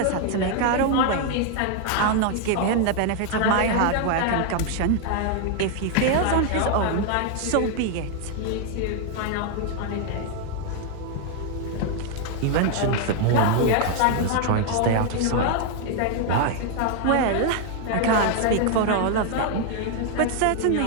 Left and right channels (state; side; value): different; both; correlation 0.00